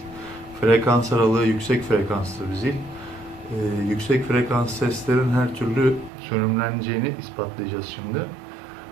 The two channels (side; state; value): left; drops out; at 6.1 s